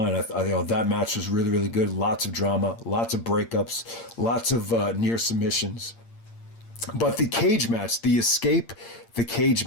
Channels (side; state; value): right; late; 8.7 ms